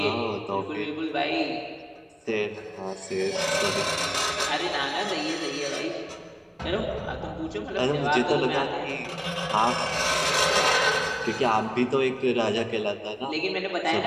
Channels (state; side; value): identical; both; correlation 1.00